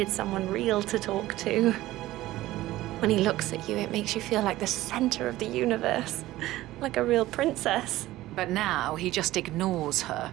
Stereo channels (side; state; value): left; quieter; 16.3 dB